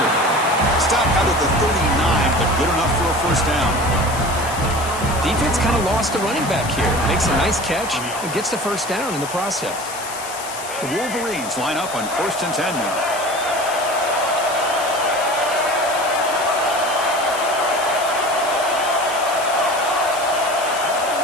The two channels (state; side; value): noise; left; hiss, 11 dB below the sound